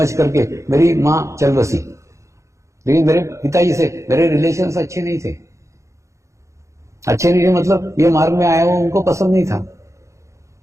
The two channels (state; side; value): late; left; 0.15 ms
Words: करके मेरी मां चल बसी, लेकिन मेरे पिताजी से मेरे रिलेशंस अच्छे नहीं थे। अच्छे नहीं थे मतलब ये मार्ग में आया वो उनको पसंद नहीं था।